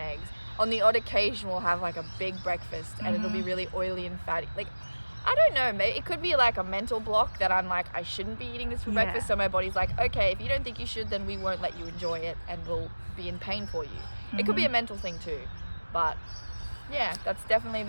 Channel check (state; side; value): inverted; both; correlation -1.00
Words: On the odd occasion, we'll have like a big breakfast and it'll be really oily and fatty. Like, I don't know, maybe it could be like a mental block that I'm like, I shouldn't be eating this for breakfast. So my body's like, okay, if you don't think you should, then we won't let you enjoy it and we'll be in pain for you. It could be a mental thing too. But yeah, that's definitely